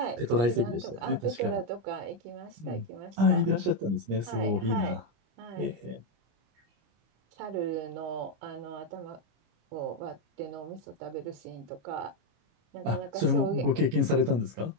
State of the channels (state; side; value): late; left; 25 ms